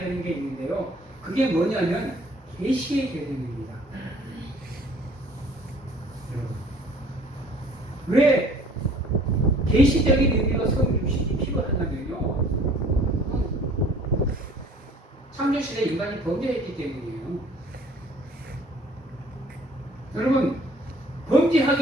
게 있는데요. 그게 뭐냐면 계시의 계명입니다. 왜 계시적인 의미로 성육신이 필요하냐면요, 창조시대 인간이 범죄했기 때문이에요. 여러분,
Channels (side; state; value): both; normal; correlation 0.53